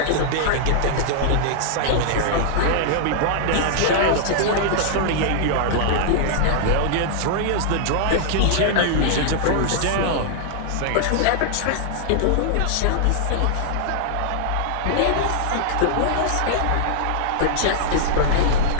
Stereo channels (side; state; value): both; different; correlation -0.01